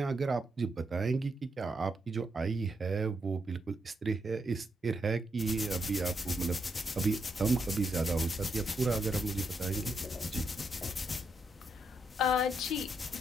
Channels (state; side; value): normal; both; correlation 0.80